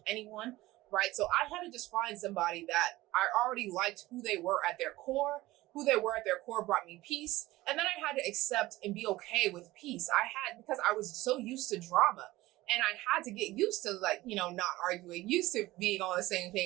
anyone, right? So I had to just find somebody that I already liked who they were at their core. Who they were at their core brought me peace. And then I had to accept and be okay with peace. Because I was so used to drama and I had to get used to not arguing, used to being on the same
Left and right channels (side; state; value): left; quieter; 18.1 dB